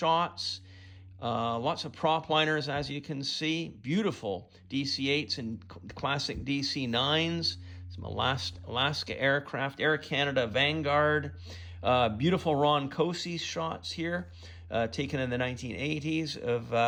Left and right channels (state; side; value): identical; both; correlation 1.00